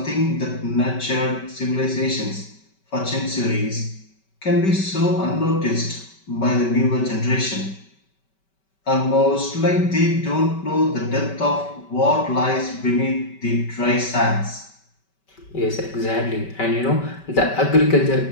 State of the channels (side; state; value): right; late; 5.2 ms